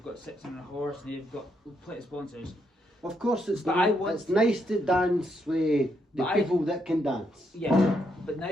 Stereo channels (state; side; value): normal; both; correlation 0.77